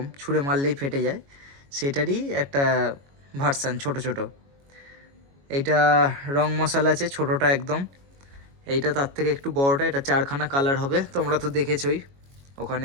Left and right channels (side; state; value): left; late; 22 ms